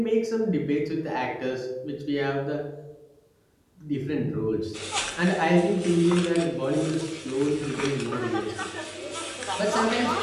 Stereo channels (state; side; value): identical; both; correlation 1.00